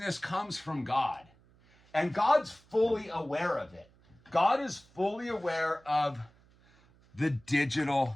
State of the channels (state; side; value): noise; right; hum, 30 dB below the sound